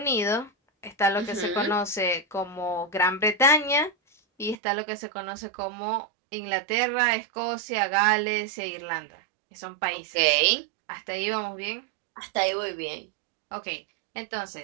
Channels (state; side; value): drops out; left; at 4.5 s